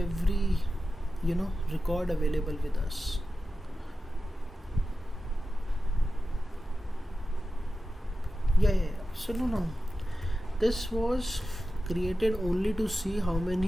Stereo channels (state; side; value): normal; both; correlation 0.93